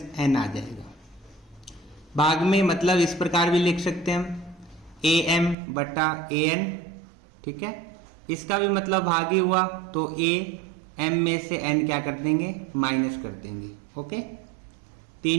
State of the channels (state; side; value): drops out; left; at 5.6 s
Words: n आ जाएगा। भाग में मतलब इस प्रकार भी लिख सकते हैं हम am बटा an। ठीक है। इसका भी मतलब भाग ही हुआ, तो a m में से n क्या कर देंगे, माइनस कर देंगे। ओके।